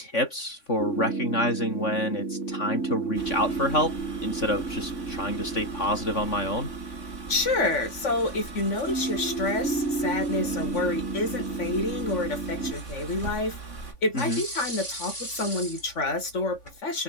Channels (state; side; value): late; right; 3.5 ms